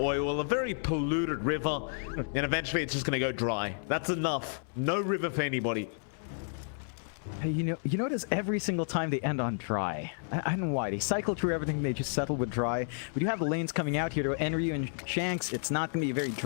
A very polluted river, and eventually it's just gonna go dry. That's enough. No river for anybody. Hey, you notice every single time they end on dry. I don't know why. They cycle through everything, they just settle with dry. We do have the lanes coming out here to Enryu and Shanks. It's not going to be a very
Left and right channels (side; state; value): right; silent; 57 dB below the other